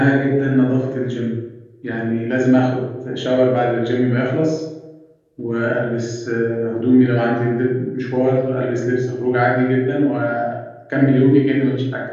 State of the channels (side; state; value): both; identical; correlation 1.00